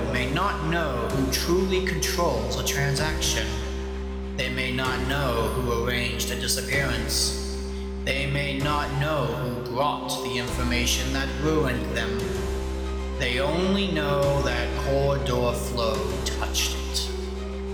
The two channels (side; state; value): both; identical; correlation 1.00